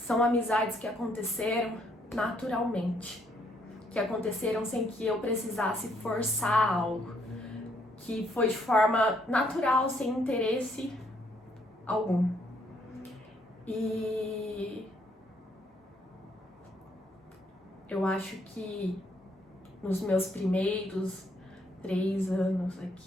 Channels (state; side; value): normal; both; correlation 0.70